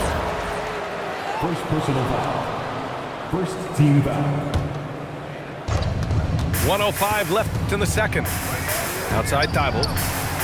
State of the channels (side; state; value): both; identical; correlation 1.00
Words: First personal foul. First team foul. 1:05 left in the second. Outside Thibault.